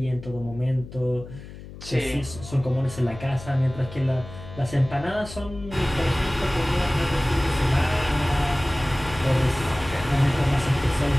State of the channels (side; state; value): left; noise; hum, 14 dB below the sound